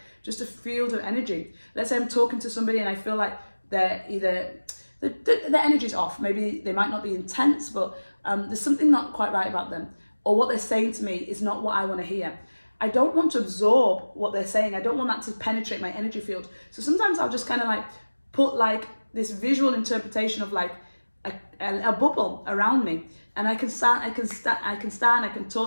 just a field of energy. Let's say I'm talking to somebody and I feel like they're either the energy's off. Maybe they might not be intense, but there's something not quite right about them, or what they're saying to me is not what I want to hear. I don't want to absorb what they're saying. I don't want that to penetrate my energy field. So sometimes I'll just kind of like put like this visual interpretation of like a bubble around me, and I can talk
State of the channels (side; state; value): both; inverted; correlation -1.00